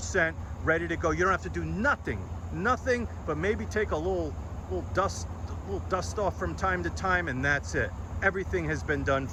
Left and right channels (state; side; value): identical; both; correlation 1.00